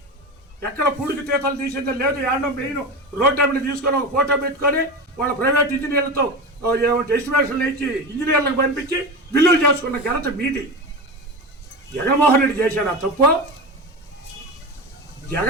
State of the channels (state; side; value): normal; both; correlation 0.24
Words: ఎక్కడ పూడికి తీతలు తీసిందో లేదు. ఏడో మెయిన్ రోడ్ టైంని తీసుకొని ఒక ఫోటో పెట్టుకొని వాళ్ళ ప్రైవేట్ ఇంజనీర్లతో ఎస్టిమేషన్లు ఇచ్చి ఇంజనీర్లకు పంపించి బిల్లులు చేసుకున్న ఘనత మీది. జగన్మోహన్ రెడ్డి చేశాడు ఆ తప్పు.